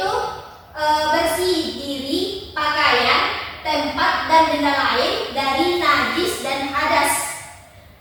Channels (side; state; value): both; identical; correlation 1.00